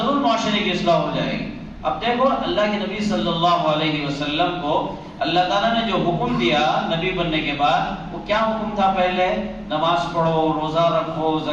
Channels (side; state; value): both; identical; correlation 1.00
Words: معاشرے کی اصلاح ہو جائے گی۔ اب دیکھو اللہ کے نبی صلی اللہ علیہ وسلم کو اللہ تعالیٰ نے جو حکم دیا نبی بننے کے بعد، وہ کیا حکم تھا؟ پہلے نماز پڑھو، روزہ رکھو،